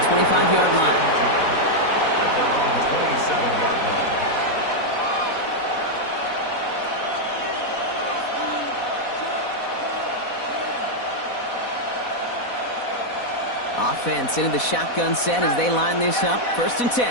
25-yard line. At their own 27-yard line. Offense into the shotgun set as they line this up. 1st and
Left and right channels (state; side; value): late; right; 4.1 ms